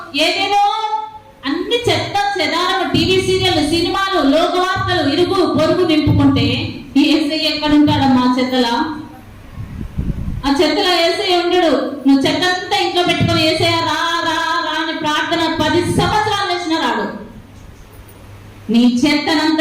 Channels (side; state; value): both; identical; correlation 1.00